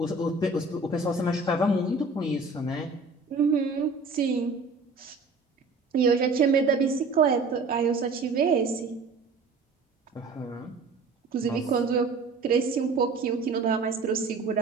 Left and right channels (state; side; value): quieter; left; 3.8 dB